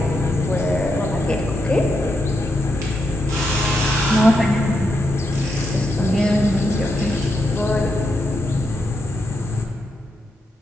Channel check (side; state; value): both; normal; correlation 0.83